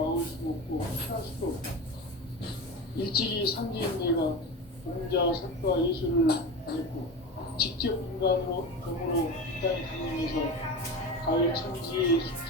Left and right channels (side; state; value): both; normal; correlation 0.26